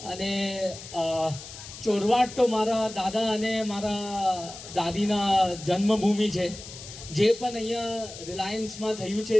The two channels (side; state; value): left; noise; hiss, 14 dB below the sound